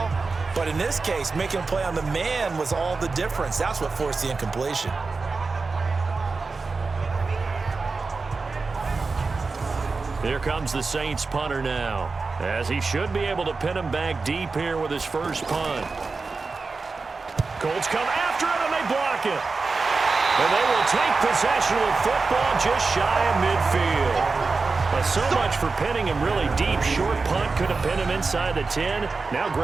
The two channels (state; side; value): quieter; left; 4.2 dB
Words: But in this case, making a play on the man was all the difference. That's what forced the incompletion. Here comes the Saints punter now, as he should be able to pin him back deep here with his first punt. Colts come after it, and they block it. And they will take possession with football just shy of midfield. But so much for pinning him really deep. Short punt could have pinned him inside the 10. Now